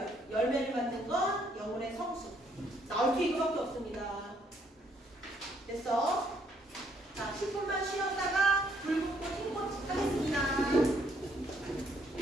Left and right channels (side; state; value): both; normal; correlation 0.69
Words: 열매를 맡는 건 영혼의 성숙. 나올 게 이거밖에 없습니다. 됐어?